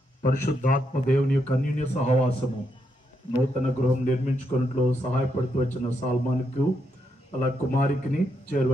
పరిశుద్ధాత్మ దేవుని యొక్క అన్యోన్య సహవాసము నూతన గృహం నిర్మించుకున్నట్లు సహాయపడుతూ వచ్చిన సాల్మాన్కు అలా కుమారికిని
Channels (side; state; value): both; normal; correlation 0.79